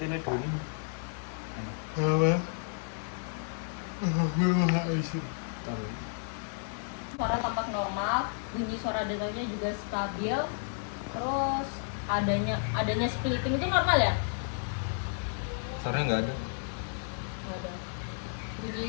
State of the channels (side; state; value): right; silent; 57 dB below the other